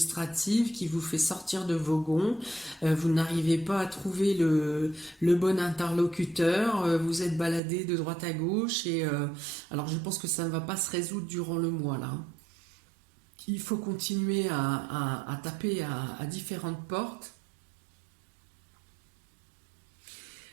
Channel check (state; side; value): drops out; left; at 7.6 s